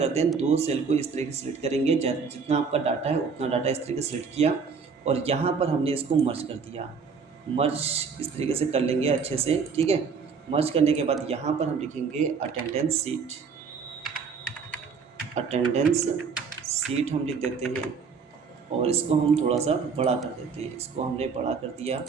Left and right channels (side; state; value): left; quieter; 5.5 dB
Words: हैं, दो सेल को इस तरीके से सिलेक्ट करेंगे, जितना आपका डाटा है उतना डाटा इस तरीके से सिलेक्ट किया और यहाँ पर हमने इसको मर्ज कर दिया। मर्ज इस तरीके से कर लेंगे अच्छे से। ठीक है, मर्ज करने के बाद यहाँ पर हम लिखेंगे अटेंडेंस सीट, अटेंडेंस सीट हम लिख देते हैं और इसको हम थोड़ा सा बड़ा कर देते हैं। इसको हमने बड़ा कर दिया,